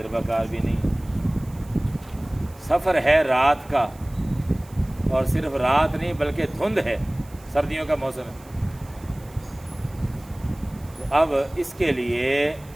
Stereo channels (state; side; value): noise; right; hiss, 25 dB below the sound